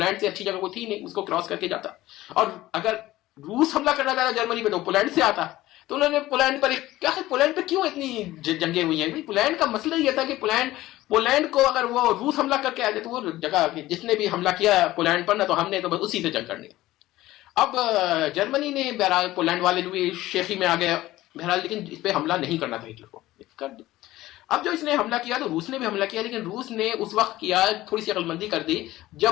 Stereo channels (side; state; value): right; quieter; 16.5 dB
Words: से अच्छी जगह कोई थी नहीं, उसको क्रॉस करके जाता। और अगर रूस हमला करना चाहता जर्मनी पे तो पोलैंड से आता। तो उन्होंने पोलैंड पर क्या है, पोलैंड पे क्यों इतनी जंगे हुई हैं? पोलैंड का मसला यह था कि पोलैंड को अगर वो रूस हमला करके आ जाए तो वो जगह, जिसने भी हमला किया पोलैंड पर ना, तो हमने तो बस उसी से जंग करनी। अब जर्मनी ने बहरहाल, पोलैंड वाले भी शेखी में आ गए बहरहाल, लेकिन इस पर हमला नहीं करना था हिटलर को, कर दिया। अब जो इसने हमला किया तो रूस ने भी हमला किया, लेकिन रूस ने उस वक्त किया, थोड़ी सी अकलमंदी कर दी